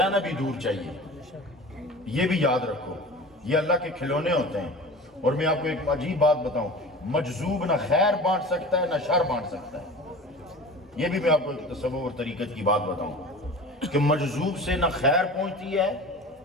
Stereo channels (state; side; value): normal; both; correlation 0.37